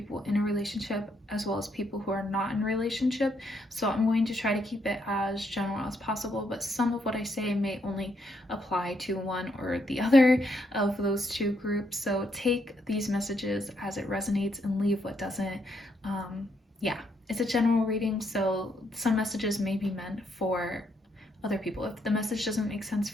in a relationship as well as people who are not in a relationship. So I'm going to try to keep it as general as possible, but some of what I say may only apply to one or the other of those two groups. So take these messages as it resonates and leave what doesn't. Yeah, it's a general reading, so some messages may be meant for other people. If the message doesn't make sense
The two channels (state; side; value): normal; both; correlation 0.75